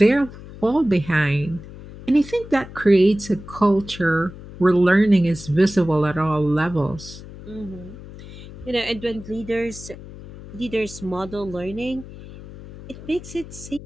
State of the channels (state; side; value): noise; left; hum, 15 dB below the sound